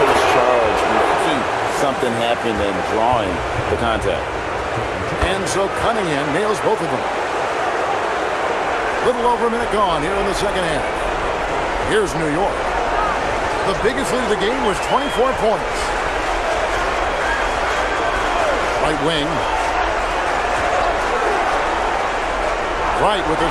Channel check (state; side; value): identical; both; correlation 1.00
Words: takes charge, making something happen and drawing the contact. And so Cunningham nails both of them. Little over a minute gone here in the second half. Here's New York. The biggest lead of the game was 24 points. Right wing. Wright with a